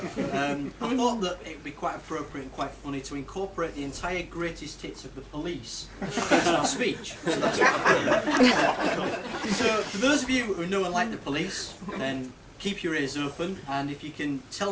I thought that it would be quite appropriate and quite funny to incorporate the entire greatest hits of the police into our speech. So that's what I've done. So for those of you who know and like the police, then keep your ears open, and if you can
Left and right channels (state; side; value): identical; both; correlation 1.00